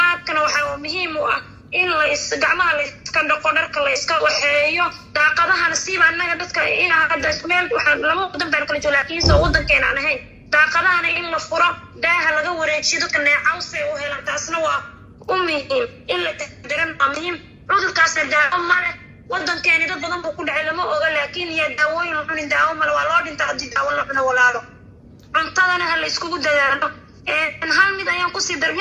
waxa muhiim u ah in la gacmaha la iska dhaqo dharka la iska waxeeyo daaqadahana siiba annaga dadka in hadda meel waxaan lama wadan baan kala joogaa laakiin soo wadankeena aan ahayn daaqadahana in la furo daaha laga wareejiyo dadka neecawse u helaan taasna waa u muhiim in la taxadaran waa muhiim cudurkaasna daawo male wadankeeni dad badan buu ku dhacay lama oga laakiin yaa daawooyin la cunin daawo male waa loo dhintaa haddii daawo la cuno walaalo cuntadana ha la iskugu dadaalo hal mid ayaan kusii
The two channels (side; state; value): both; identical; correlation 1.00